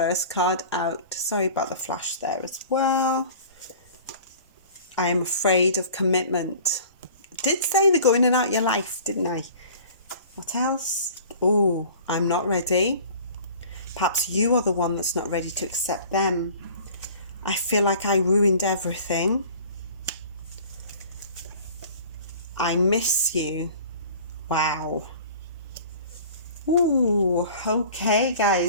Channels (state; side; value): inverted; both; correlation -0.45